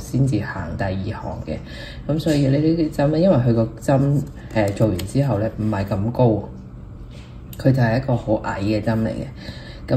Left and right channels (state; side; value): identical; both; correlation 1.00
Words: 至行第二行嘅。咁所以呢啲針咧，因為佢個針做完之後咧唔係咁高，佢就係一個好矮嘅針嚟嘅。